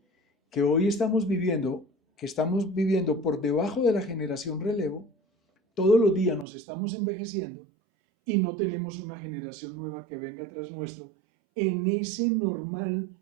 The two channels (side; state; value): left; drops out; at 6.5 s